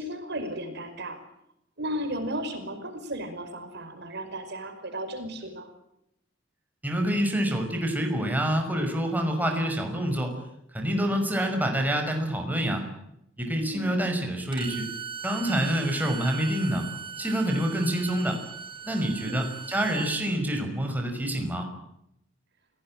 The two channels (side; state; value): both; normal; correlation 0.68